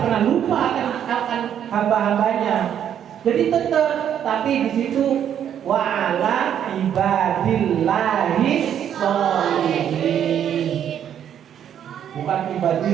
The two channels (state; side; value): quieter; left; 9.5 dB